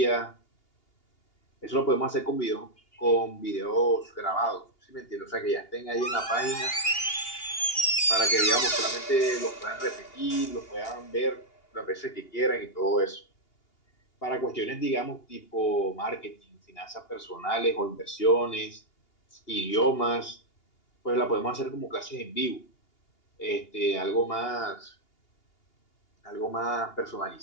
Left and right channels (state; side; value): late; right; 2.8 ms